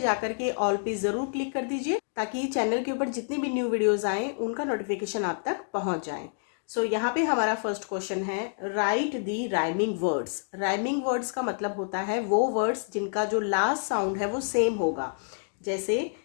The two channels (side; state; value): right; silent; digital silence